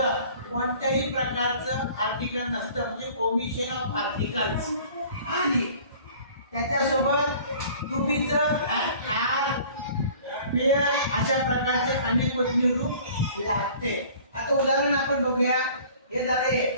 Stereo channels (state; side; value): inverted; both; correlation -0.49